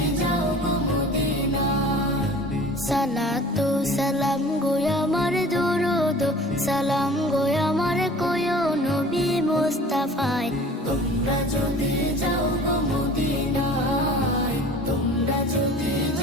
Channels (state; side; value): normal; both; correlation 0.44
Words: যাও গো মদিনায়। সালাতু সালাম গো আমার দরুদ সালাম গো আমার কোয়ো নবী মুস্তাফায়। তোমরা যদি যাও গো মদিনায়, তোমরা যদি